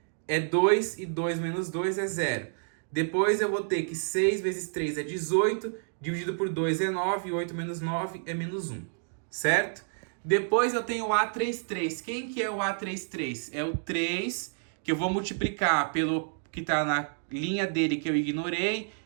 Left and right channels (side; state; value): left; silent; digital silence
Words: é 2, e 2 menos 2 é 0. Depois eu vou ter que 6 vezes 3 é 18, dividido por 2 é 9, e 8 menos 9 é menos 1. Certo? Depois eu tenho o A33. Quem que é o A33? É o 3, que eu vou multiplicar pelo que está na linha dele, que eu ignorei,